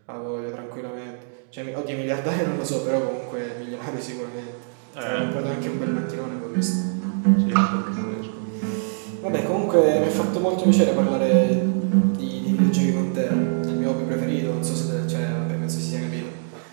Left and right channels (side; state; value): left; silent; digital silence